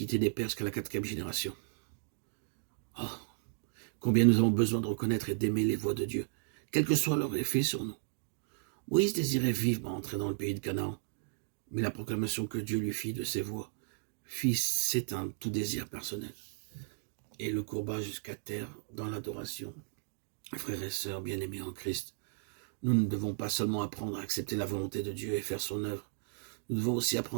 des pères jusqu'à la 4e génération. Oh, combien nous avons besoin de reconnaître et d'aimer les voies de Dieu, quel que soit leur effet sur nous. Moïse désirait vivement entrer dans le pays de Canaan, mais la proclamation que Dieu lui fit de ses voies fit s'éteindre tout désir personnel et le courba jusqu'à terre dans l'adoration. Frères et sœurs bien-aimés en Christ, nous ne devons pas seulement apprendre à accepter la volonté de Dieu et faire son œuvre, nous devons aussi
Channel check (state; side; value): silent; left; digital silence